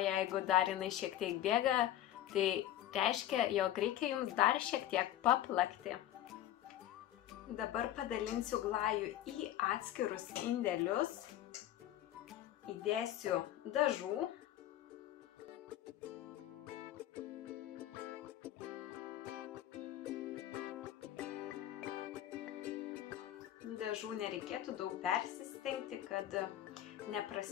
jeigu dar jinai šiek tiek bėga, tai reiškia, jog reikia jums dar šiek tiek paplakti. Dabar padalinsiu glajų į atskirus indelius, įdėsiu dažų. Dažų nereikėtų daug persistengti, kad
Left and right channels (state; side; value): quieter; right; 12.7 dB